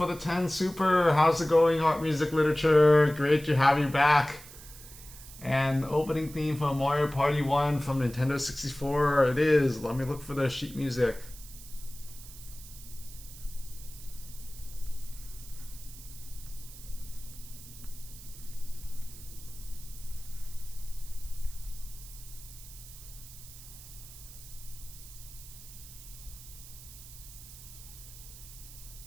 the 10 super. How's it going, Art Music Literature? Great to have you back. And opening theme from Mario Party 1 from Nintendo 64. It is. Let me look for the sheet music.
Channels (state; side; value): noise; right; hiss, 16 dB below the sound